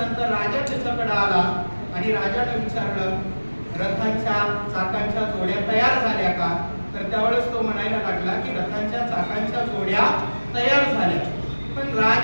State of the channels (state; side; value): inverted; both; correlation -1.00